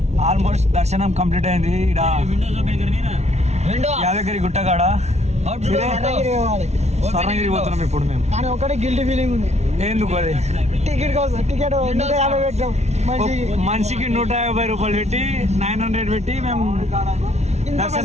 ఆల్మోస్ట్ దర్శనం కంప్లీట్ అయింది ఇక్కడ యాదగిరి గుట్టగాడ స్వర్ణగిరి పోతున్నాం ఇప్పుడు మేము కానీ ఒకటే గిల్టీ ఫీలింగ్ ఉంది ఎందుకు అది టికెట్ కోసం టికెట్ 150 పెట్టాం మనిషికి 150 రూపాయలు పెట్టి 900 పెట్టి మేము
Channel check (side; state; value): left; late; 0.32 ms